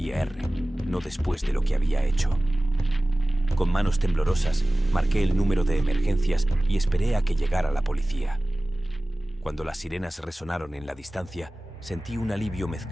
no después de lo que había hecho. Con manos temblorosas, marqué el número de emergencias y esperé a que llegara la policía. Cuando las sirenas resonaron en la distancia, sentí un alivio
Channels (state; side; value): normal; both; correlation 0.97